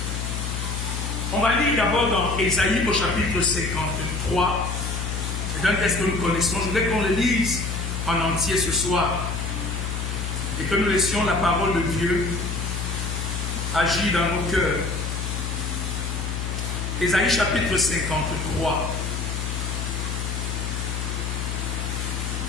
On va lire d'abord dans Ésaïe au chapitre 53. C'est un texte que nous connaissons. Je voudrais qu'on le lise en entier ce soir et que nous laissions la parole de Dieu agir dans nos cœurs. Ésaïe chapitre 53.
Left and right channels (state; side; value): noise; left; hum, 3 dB below the sound